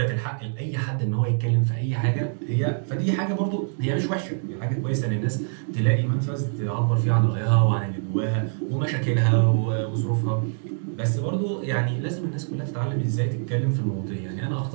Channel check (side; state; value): left; silent; digital silence